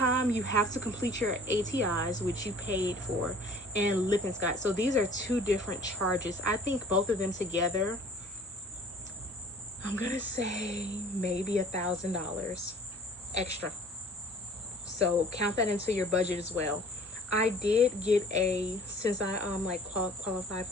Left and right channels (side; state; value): both; normal; correlation 0.48